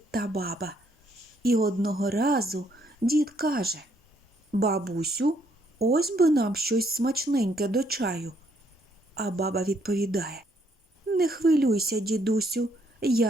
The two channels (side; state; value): both; normal; correlation 0.70